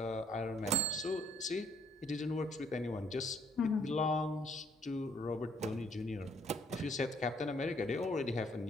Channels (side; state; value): both; normal; correlation 0.65